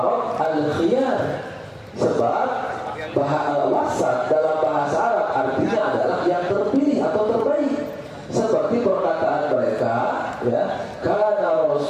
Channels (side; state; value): both; identical; correlation 1.00